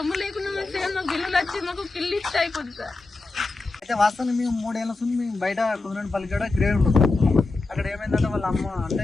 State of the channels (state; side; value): quieter; right; 3.5 dB